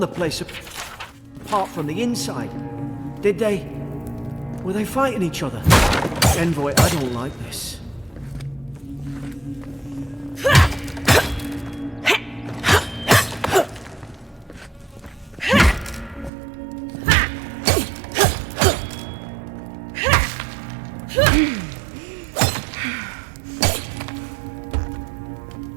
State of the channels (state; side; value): drops out; left; at 16.3 s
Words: place apart from the inside. Did they? Were they fighting each other? Envoy, I don't like this.